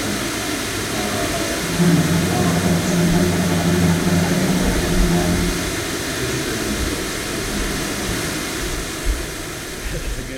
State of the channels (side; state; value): both; identical; correlation 1.00